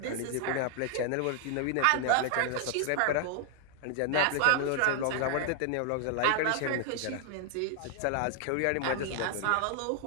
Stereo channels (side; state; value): both; different; correlation 0.00